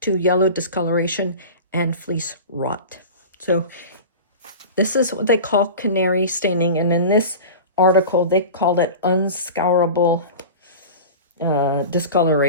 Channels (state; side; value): inverted; both; correlation -0.33